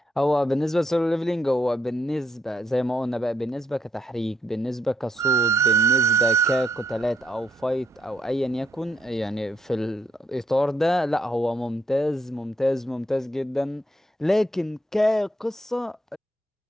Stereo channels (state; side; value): normal; both; correlation 0.75